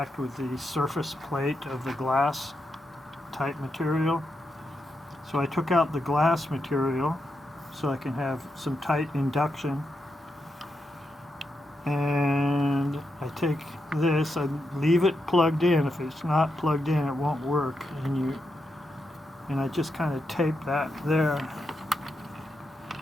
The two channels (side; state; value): both; normal; correlation 0.85